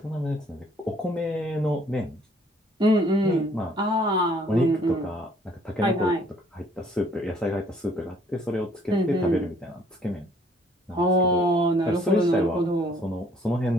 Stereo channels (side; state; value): both; normal; correlation 0.61